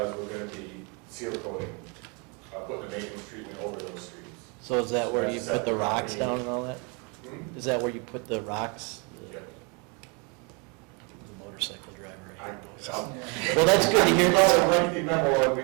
we're gonna be seal coating, putting a maintenance treatment over those streets. So is that where you That's put the rocks separate. down and all that? Hmm? Is that where you put the rocks? Yep. The motorcycle driver. I- right? I'll- Well, that's good to hear. It's a lengthy memo, and we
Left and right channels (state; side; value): quieter; left; 32.9 dB